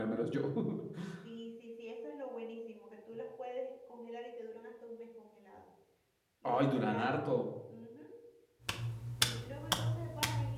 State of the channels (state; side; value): identical; both; correlation 1.00